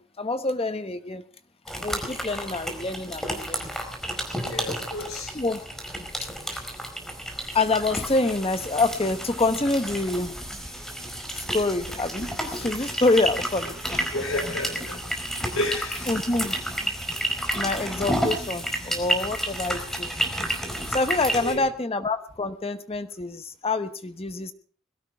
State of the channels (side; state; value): both; normal; correlation 0.51